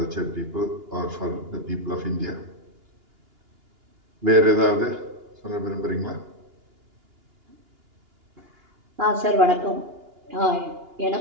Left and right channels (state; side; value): late; left; 2.9 ms